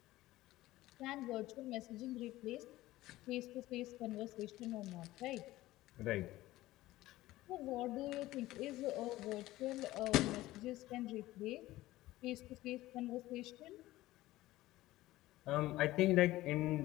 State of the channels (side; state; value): right; quieter; 16.9 dB